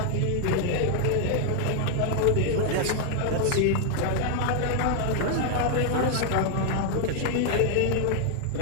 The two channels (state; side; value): different; both; correlation 0.00